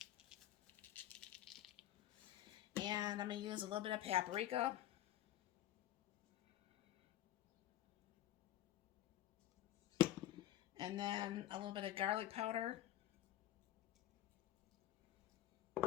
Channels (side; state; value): right; quieter; 13.4 dB